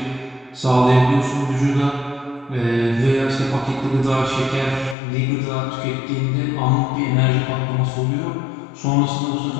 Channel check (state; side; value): drops out; right; at 5.0 s